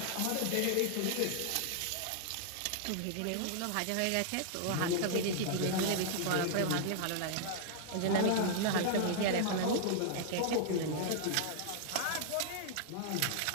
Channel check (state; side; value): different; both; correlation -0.01